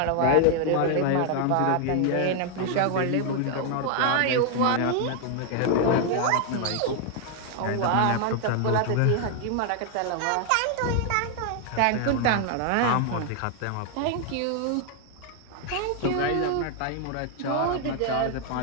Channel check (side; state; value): both; different; correlation 0.00